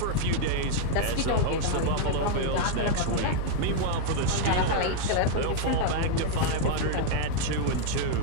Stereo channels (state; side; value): different; both; correlation 0.00